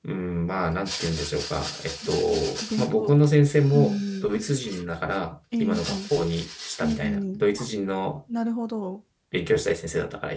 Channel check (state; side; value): identical; both; correlation 1.00